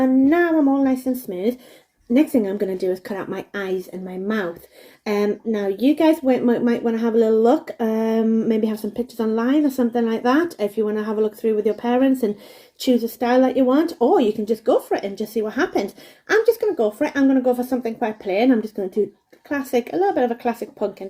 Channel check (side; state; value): both; identical; correlation 1.00